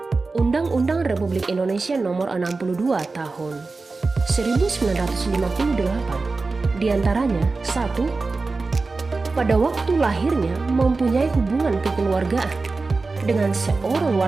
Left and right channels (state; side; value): quieter; left; 3.8 dB